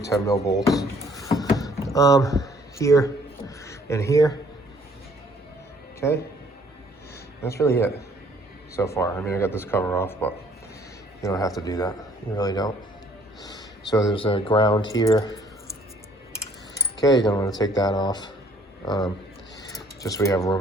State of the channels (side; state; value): both; normal; correlation 0.60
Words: mil bolts. Here and here. Okay. That's really it so far. I mean, I got this cover off, but you don't have to do that. You really don't. So there's a ground here. Okay, you're gonna want to take that off. Just so we have